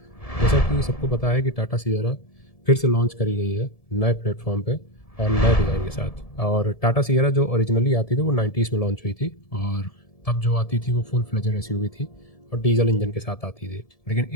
जैसा कि सबको पता है कि टाटा सियरा फिर से लॉन्च करी गई है नए प्लेटफॉर्म पे और नए डिज़ाइन के साथ। और टाटा सियरा जो ओरिजिनली आती थी वो 90s में लॉन्च हुई थी, और तब जो आती थी वो फुल फ्लेजेड एसयूवी थी और डीजल इंजन के साथ आती थी। लेकिन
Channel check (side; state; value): right; late; 1.7 ms